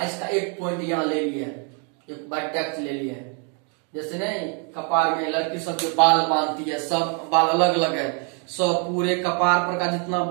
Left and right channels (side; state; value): left; quieter; 39.6 dB